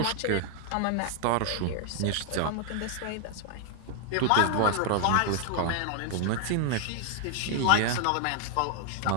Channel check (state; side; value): different; both; correlation 0.00